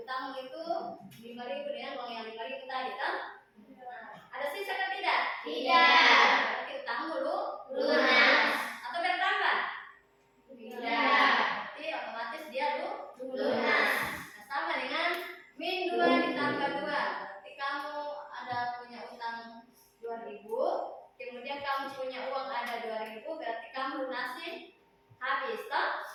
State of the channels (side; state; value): both; identical; correlation 1.00